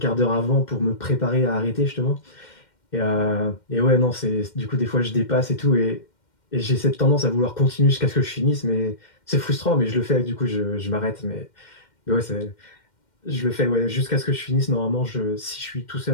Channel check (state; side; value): late; right; 2.1 ms